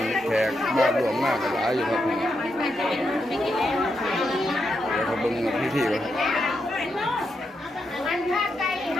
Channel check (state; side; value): normal; both; correlation 0.83